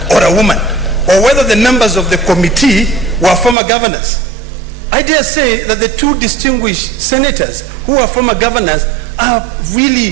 or a woman, or whether the members of the committee were former governors. I dare say that the two distinguished senators who are former governors are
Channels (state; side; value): drops out; left; at 3.6 s